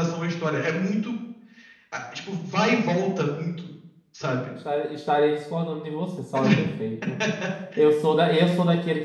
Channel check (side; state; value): both; identical; correlation 1.00